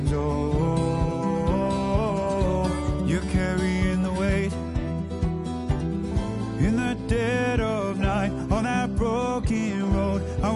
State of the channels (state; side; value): identical; both; correlation 1.00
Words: Oh, you're carrying the weight in the dead of night on that broken road. I